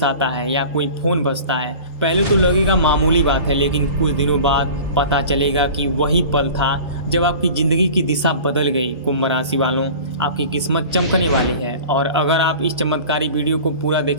आता है या कोई फोन बजता है। पहले तो लगेगा मामूली बात है, लेकिन कुछ दिनों बाद पता चलेगा कि वही पल था जब आपकी ज़िंदगी की दिशा बदल गई। कुंभ राशि वालों, आपकी किस्मत चमकने वाली है और अगर आप इस चमत्कारी वीडियो को पूरा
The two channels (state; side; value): inverted; both; correlation -0.40